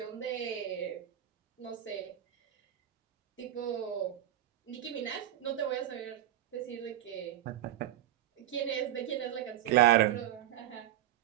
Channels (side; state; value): left; quieter; 12.6 dB